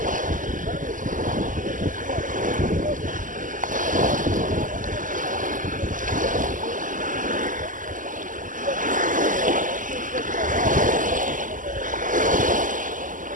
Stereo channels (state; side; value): late; left; 0.38 ms